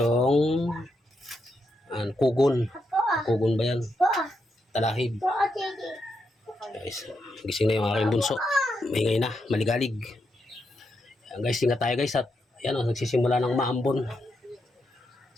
kugon. Kugon ba yan? Talahib. Guys, gising na yung aking bunso. Maingay na, maligalig. Yan guys, ingat tayo guys. At yan, nagsisimula ng maambon.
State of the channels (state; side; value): normal; both; correlation 0.82